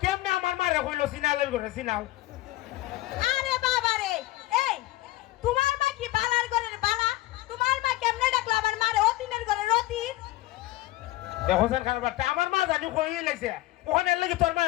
কেমনে আমার মারে কইলো সিনালের ঘরে সিনাও? আরে বাবা রে, এই তোমার মা কি বালার ঘরের বালা? তোমার মা কেমনে ডাকলো আমার মারে অতিনের ঘরে রতিন? দেখো স্যার কারবারটা আমার মা জানি কই লাইছে, ওখানে লাগি তোর মা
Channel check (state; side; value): quieter; right; 17.6 dB